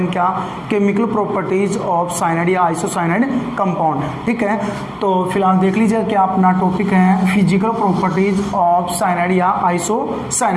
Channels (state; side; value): identical; both; correlation 1.00